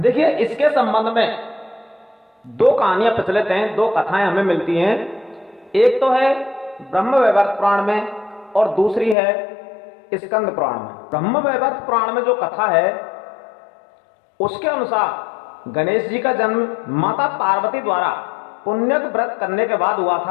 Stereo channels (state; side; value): drops out; right; at 9.2 s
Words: इसके संबंध में दो कहानियां प्रचलित हैं, दो कथाएं हमें मिलती हैं। एक तो है ब्रह्मवैवर्त पुराण में और दूसरी है स्कंद पुराण में। ब्रह्मवैवर्त पुराण में जो कथा है उसके अनुसार गणेश जी का जन्म माता पार्वती द्वारा पुण्य व्रत करने के बाद हुआ